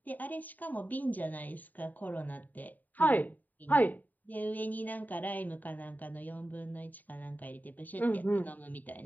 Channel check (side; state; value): right; late; 0.084 ms